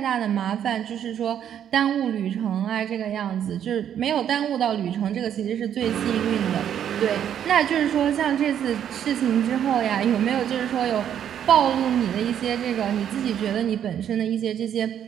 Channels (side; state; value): left; quieter; 9.6 dB